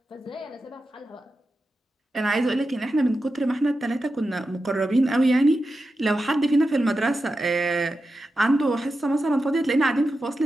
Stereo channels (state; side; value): normal; both; correlation 0.91